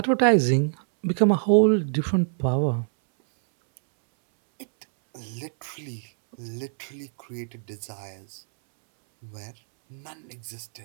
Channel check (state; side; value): silent; left; 61 dB below the other